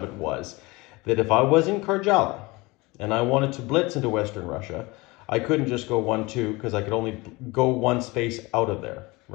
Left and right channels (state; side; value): quieter; right; 23.4 dB